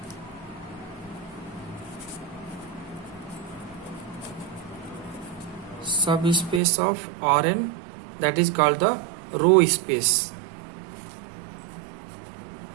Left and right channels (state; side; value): drops out; left; at 6.6 s